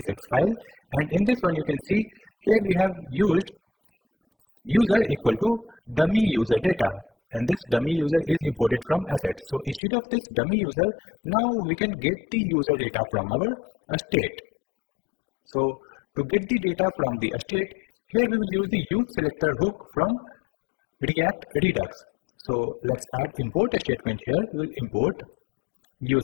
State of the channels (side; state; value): right; drops out; at 9.8 s